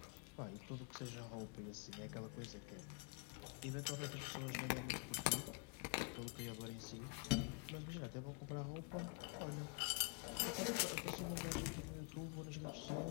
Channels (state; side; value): quieter; right; 29.4 dB